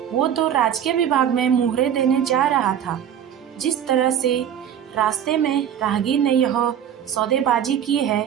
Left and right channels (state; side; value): quieter; left; 9.4 dB